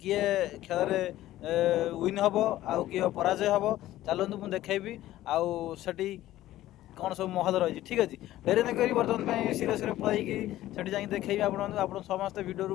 खेल रे विन हबो आ किए पराजय हबो। चलंतु मु देखैबी आ सेठी कौन सब महल रही ठीक अच्छे डेरी न करी बर्तमान सीरे सीरे पलैकी सेठी जाई देखैबी आपन समस्त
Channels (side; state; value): right; quieter; 14.7 dB